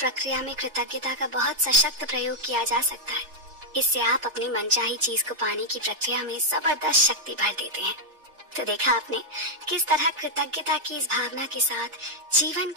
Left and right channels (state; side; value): late; left; 3.4 ms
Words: में कृतज्ञता का बहुत सशक्त प्रयोग किया जा सकता है। इससे आप अपनी मनचाही चीज को पाने की प्रक्रिया में जबरदस्त शक्ति भर देते हैं। तो देखा आपने किस तरह कृतज्ञता की इस भावना के साथ जीवन